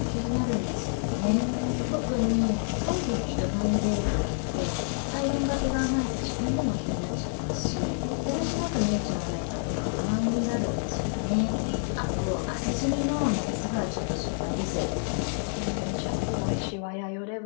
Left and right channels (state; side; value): silent; right; 59 dB below the other